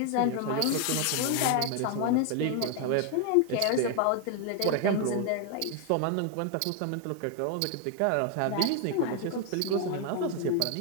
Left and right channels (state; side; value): different; both; correlation 0.00